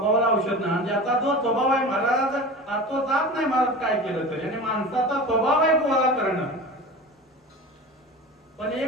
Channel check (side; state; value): both; normal; correlation 0.33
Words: औषध नाही. ज्याचा जो स्वभाव आहे महाराज तो जात नाही महाराज काय केलं तरी. आणि माणसाचा स्वभाव आहे गोळा करणं. पण